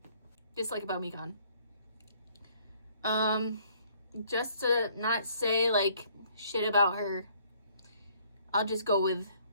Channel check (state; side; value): inverted; both; correlation -0.62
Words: Just like about Mikan. Just to not say, like, shit about her, I'll just go with